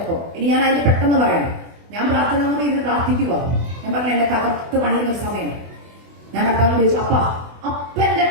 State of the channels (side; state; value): left; late; 24 ms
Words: ഇനി ഞാൻ അതിന്റെ പെട്ടെന്ന് പറയാം. ഞാൻ പ്രാർത്ഥനാമുറി ഇരുന്ന് പ്രാർത്ഥിക്കുക. ഞാൻ പറഞ്ഞു, എന്നെ തകർത്ത് പണിയുന്നൊരു സമയം. ഞാൻ കർത്താവിനോട് ചോദിച്ചു, അപ്പന്റെ